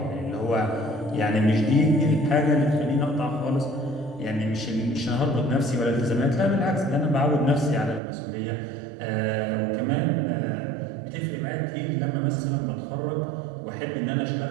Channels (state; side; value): drops out; left; at 8.0 s